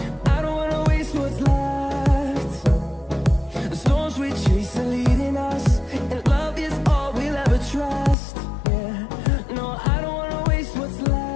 I don't wanna waste what's left. The storms we chase are leading us, and love is all we'll ever trust. Yeah, no, I don't wanna waste what's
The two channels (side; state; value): right; drops out; at 8.2 s